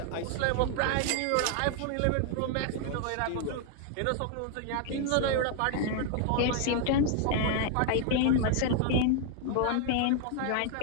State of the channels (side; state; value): both; different; correlation 0.00